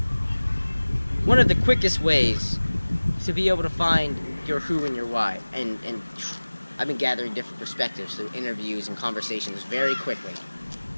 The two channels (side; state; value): both; inverted; correlation -1.00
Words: one of the quickest ways to be able to find your who and your why. And I've been gathering different perspectives through interviews and conversations very quickly.